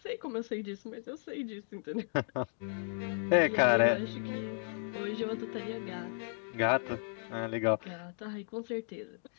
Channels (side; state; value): right; silent; digital silence